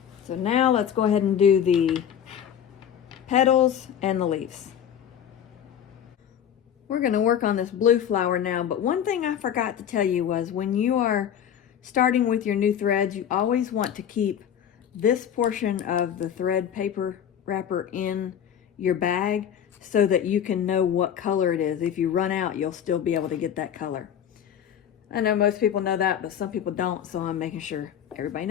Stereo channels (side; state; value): right; quieter; 9.1 dB